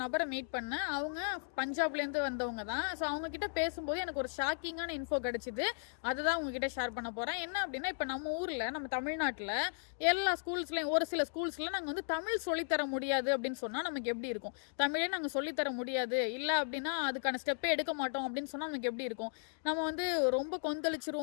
நபரை மீட் பண்ணேன். அவங்க பஞ்சாப்ல இருந்து வந்தவங்க தான். ஸோ அவங்க கிட்ட பேசும்போது எனக்கு ஒரு ஷாக்கிங்கான இன்ஃபோ கிடைச்சிது. அதுதான் உங்ககிட்ட ஷேர் பண்ண போறேன். என்ன அப்படின்னா, இப்ப நம்ம ஊர்ல நம்ம தமிழ்நாட்டுல எல்லா ஸ்கூல்ஸ்லயும் ஒரு சில ஸ்கூல்ஸ்ல நாங்க வந்து தமிழ் சொல்லித்தர முடியாது அப்படின்னு சொன்னா நமக்கு எப்படி இருக்கும்? தமிழே நாங்க சொல்லித்தர முடியாது, இல்ல அப்படின்னா அதுக்கான ஸ்டெப்பே எடுக்க மாட்டோம் அப்படின்னு சொன்னா நமக்கு எப்படி இருக்கும்? நம்ம வந்து ரொம்ப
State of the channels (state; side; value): silent; right; digital silence